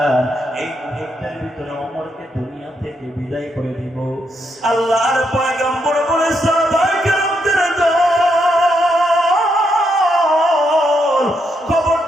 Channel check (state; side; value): normal; both; correlation 0.79